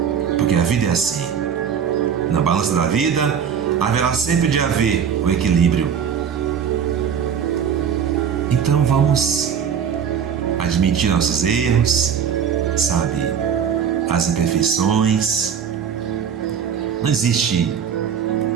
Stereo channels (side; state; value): left; quieter; 7.7 dB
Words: Porque a vida é assim. Na balança da vida, haverá sempre de haver o equilíbrio. Então vamos admitir nossos erros, sabe, as imperfeições. Não existe